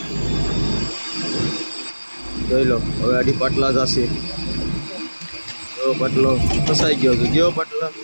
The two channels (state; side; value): inverted; both; correlation -1.00